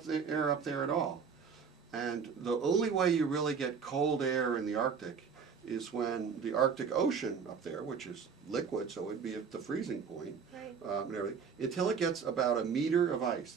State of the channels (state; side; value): quieter; left; 6.2 dB